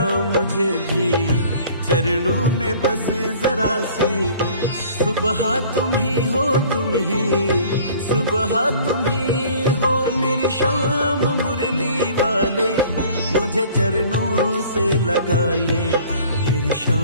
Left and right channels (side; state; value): both; inverted; correlation -0.50